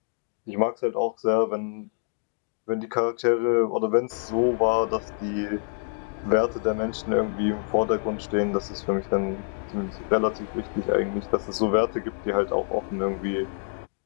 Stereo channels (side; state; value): right; silent; digital silence